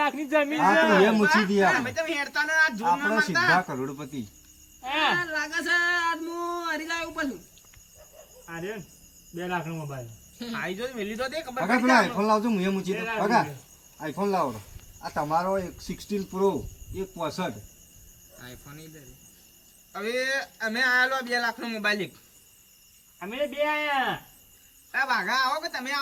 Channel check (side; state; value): both; identical; correlation 1.00